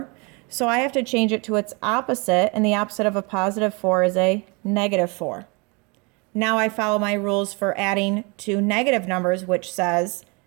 So I have to change it to its opposite, and the opposite of a +4 is a -4. Now I follow my rules for adding to negative numbers, which says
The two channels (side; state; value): left; quieter; 30.1 dB